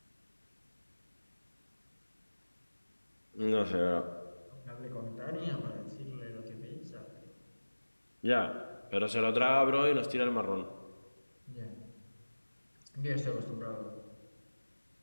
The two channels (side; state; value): both; inverted; correlation -1.00